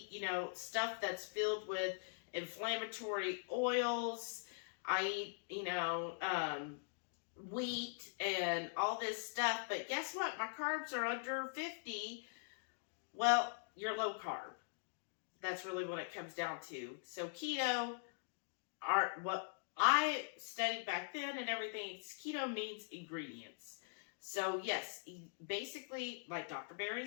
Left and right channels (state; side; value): silent; right; digital silence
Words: stuff that's filled with inflammatory oils. I eat, wheat and all this stuff. But guess what? My carbs are under 50. Well, you're low carb. That's really what it comes down to. So keto, what I studied back then and everything, keto means ingredients. So yes, basically, like Dr. Berry